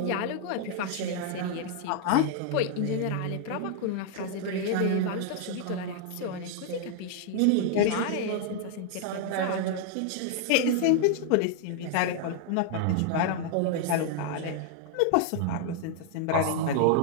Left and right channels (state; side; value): different; both; correlation 0.00